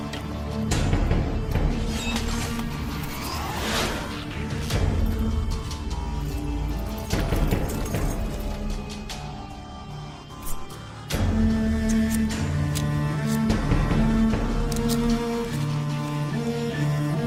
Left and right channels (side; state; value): both; identical; correlation 1.00